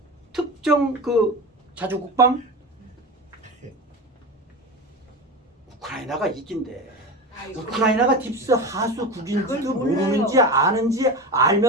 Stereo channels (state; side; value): normal; both; correlation 0.26